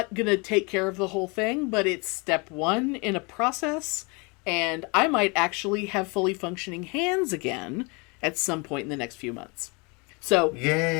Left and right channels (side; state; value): right; quieter; 30.1 dB